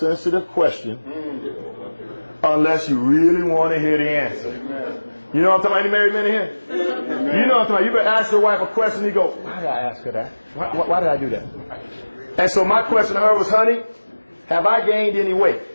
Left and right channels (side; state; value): both; inverted; correlation -1.00